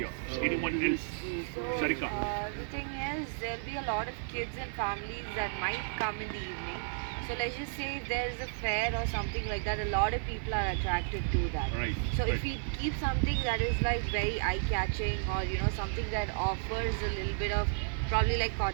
Anyone else? So, Sarika. the thing is, there'll be a lot of kids and families that might come in the evening. So let's just say if there's a fair or something like that, a lot of people are attracted to that. Right. So right. if we keep something that is like very eye-catching, or something that offers a little bit of probably like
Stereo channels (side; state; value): left; silent; 56 dB below the other